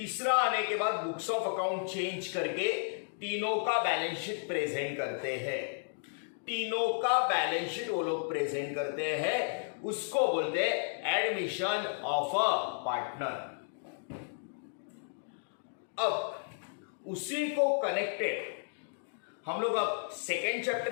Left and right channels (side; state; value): right; silent; digital silence